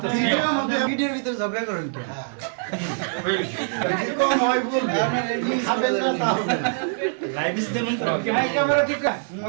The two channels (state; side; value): silent; left; digital silence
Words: ভিডিওর ভিতরে ঝগড়া করেন কেন? ক্যামেরা ঠিক